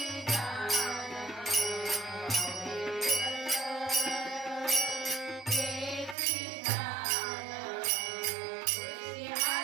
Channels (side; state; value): left; drops out; at 6.2 s